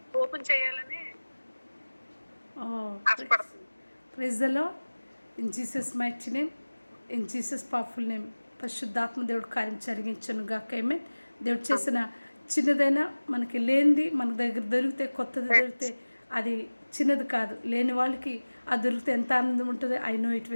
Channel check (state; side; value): inverted; both; correlation -1.00